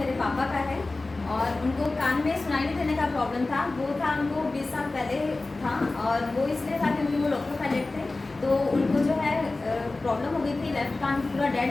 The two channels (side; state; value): right; quieter; 3.3 dB